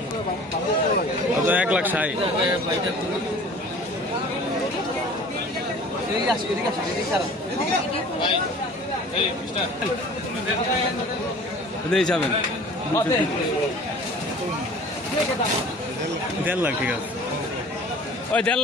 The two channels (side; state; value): both; normal; correlation 0.45